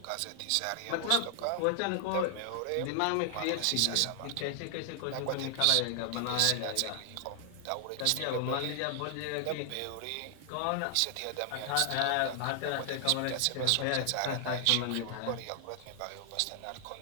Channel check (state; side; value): different; both; correlation 0.00